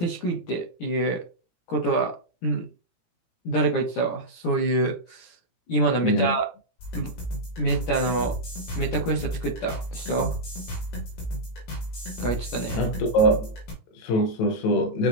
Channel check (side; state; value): right; late; 18 ms